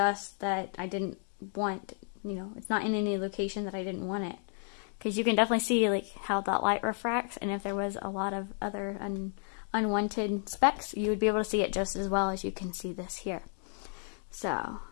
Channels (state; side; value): silent; right; 56 dB below the other